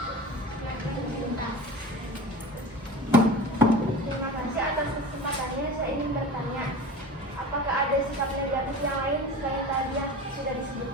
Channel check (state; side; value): normal; both; correlation 0.34